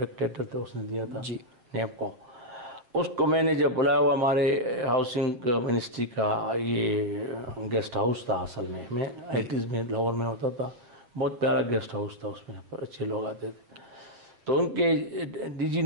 تھے, اس نے دیا تھا جی نیب کو. اس کو میں نے جب بلایا, ہوا ہمارے ہاؤسنگ منسٹری کا یہ گیسٹ ہاؤس تھا اصل میں 80s میں لاہور میں ہوتا تھا, بہت پیارا گیسٹ ہاؤس تھا, اس میں اچھے لوگ آتے تھے. تو ان کے ڈی جی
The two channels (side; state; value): left; late; 7.9 ms